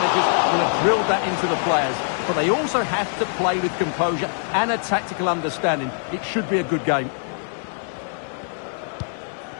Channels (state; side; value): silent; right; 63 dB below the other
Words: will have drilled that into the players. But they also have to play with composure and a tactical understanding. It should be a good game.